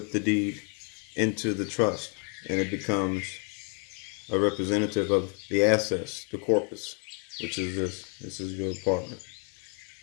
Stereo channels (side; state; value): right; quieter; 38.8 dB